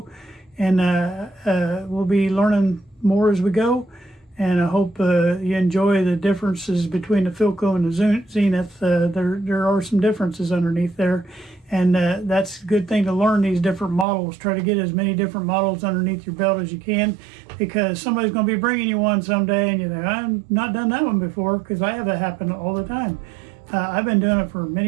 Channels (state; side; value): drops out; left; at 14.1 s